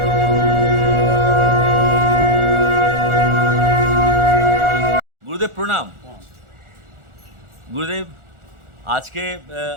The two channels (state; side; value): late; left; 1.4 ms